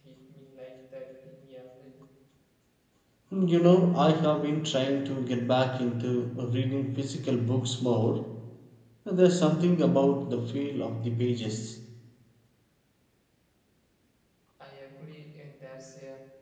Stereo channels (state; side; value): identical; both; correlation 1.00